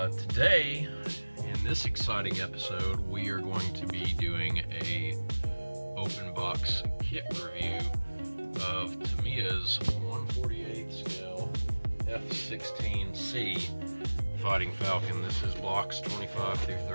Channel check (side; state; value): both; inverted; correlation -1.00